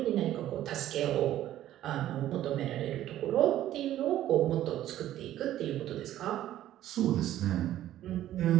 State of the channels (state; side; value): quieter; left; 13.0 dB